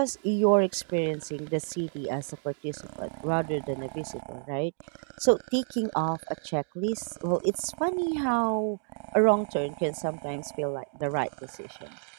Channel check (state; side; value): silent; left; 55 dB below the other